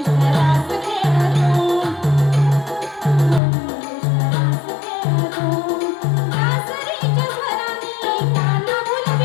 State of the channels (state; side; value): drops out; right; at 3.4 s